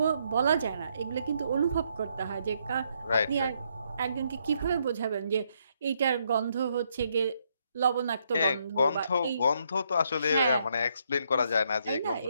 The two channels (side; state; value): both; inverted; correlation -0.74